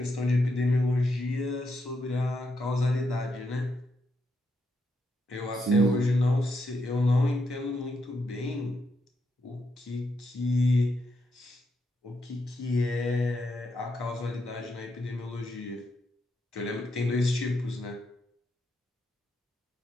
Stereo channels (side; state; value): both; normal; correlation 0.81